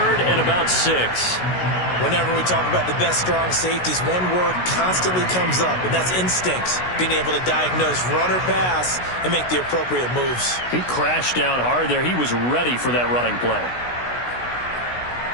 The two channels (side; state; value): right; late; 16 ms